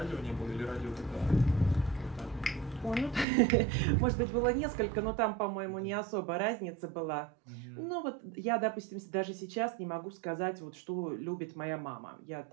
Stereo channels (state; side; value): drops out; left; at 3.2 s